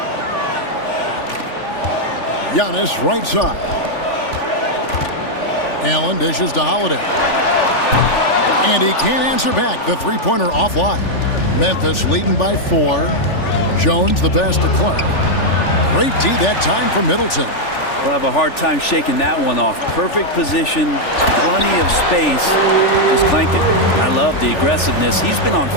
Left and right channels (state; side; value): late; right; 3.4 ms